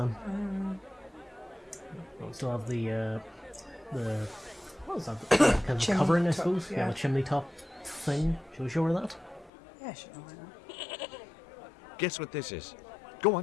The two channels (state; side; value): drops out; right; at 9.5 s